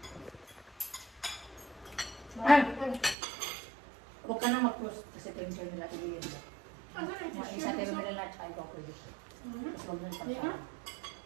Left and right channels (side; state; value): left; drops out; at 3.2 s